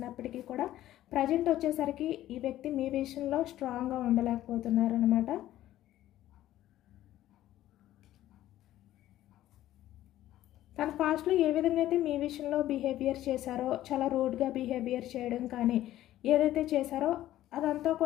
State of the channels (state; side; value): quieter; right; 13.8 dB